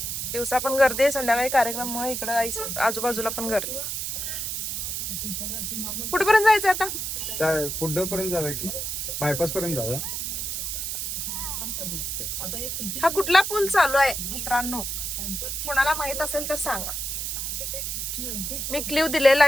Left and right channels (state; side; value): noise; right; hiss, 3 dB below the sound